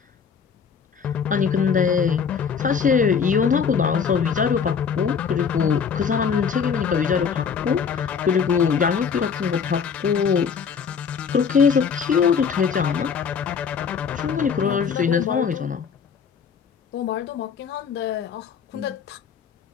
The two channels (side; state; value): right; quieter; 6.5 dB